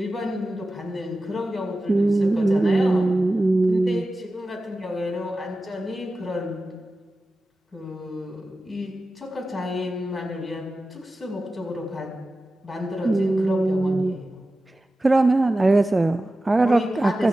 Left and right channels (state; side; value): normal; both; correlation 0.94